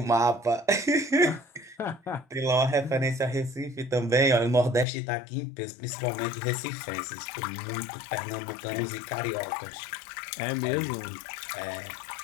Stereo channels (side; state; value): right; drops out; at 4.9 s